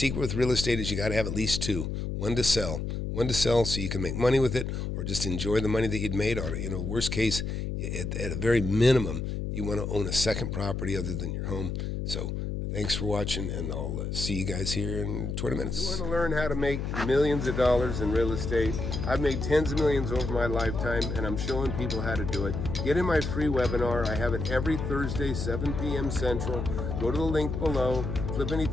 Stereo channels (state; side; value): noise; left; hum, 3 dB below the sound